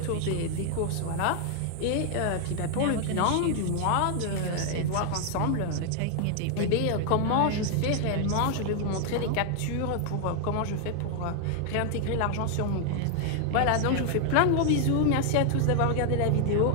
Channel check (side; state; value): both; different; correlation 0.00